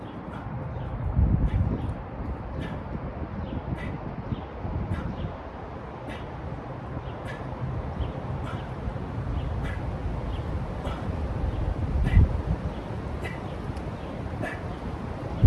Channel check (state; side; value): identical; both; correlation 1.00